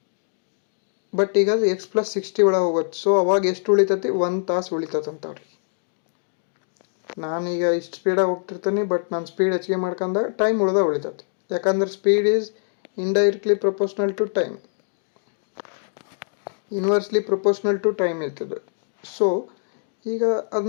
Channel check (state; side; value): silent; right; digital silence